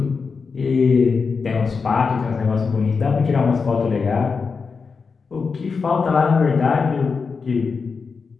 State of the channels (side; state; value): right; quieter; 5.1 dB